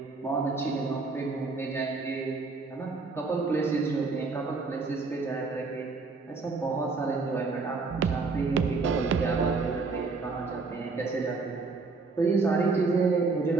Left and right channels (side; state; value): left; quieter; 4.1 dB